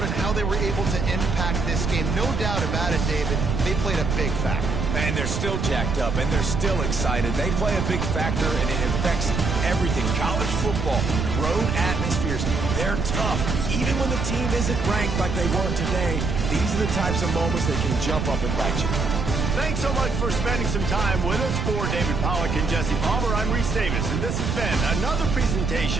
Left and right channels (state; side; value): noise; right; rumble, 1 dB below the sound